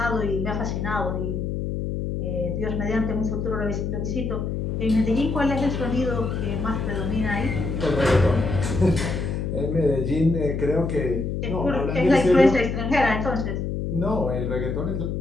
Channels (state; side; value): noise; left; hum, 2 dB below the sound